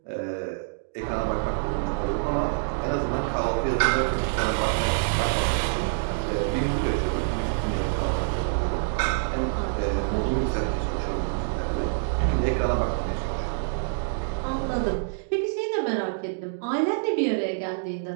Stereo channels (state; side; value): silent; left; digital silence